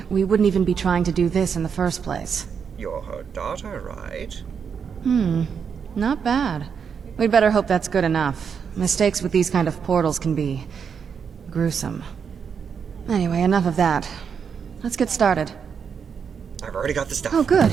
we wouldn't even be trying to do this in the first place. You're her daughter, right? Not bad. We'd better hope that's good enough. Mistakes with these kind of portals can be... gruesome. Anyway, enough of that. Let's get started. I've already got the stuff. Oh, good.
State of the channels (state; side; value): quieter; left; 6.7 dB